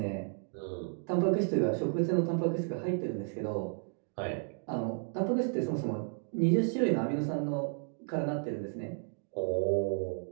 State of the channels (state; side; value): silent; left; 56 dB below the other